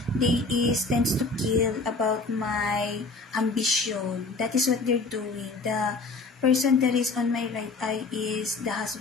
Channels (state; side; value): quieter; right; 3.7 dB